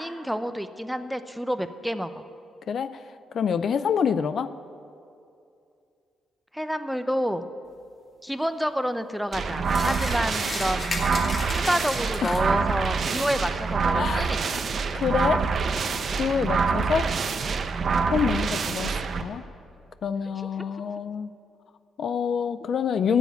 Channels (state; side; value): normal; both; correlation 0.80